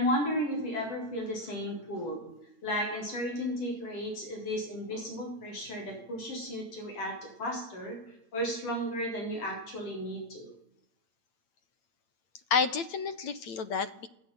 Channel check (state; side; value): late; right; 8.9 ms